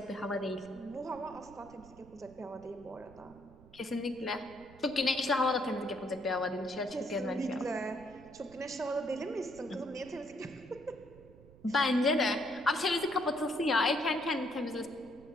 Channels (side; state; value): right; noise; rumble, 22 dB below the sound